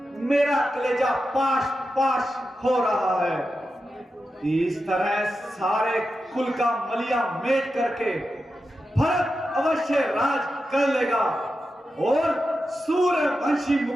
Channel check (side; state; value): both; normal; correlation 0.90